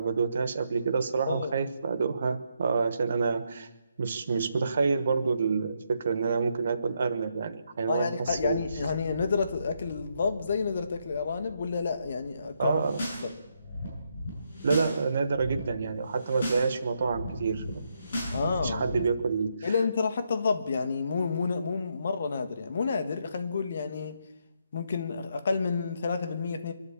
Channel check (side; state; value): both; inverted; correlation -0.77